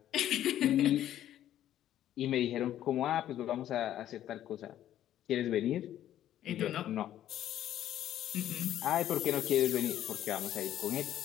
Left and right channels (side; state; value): right; quieter; 12.0 dB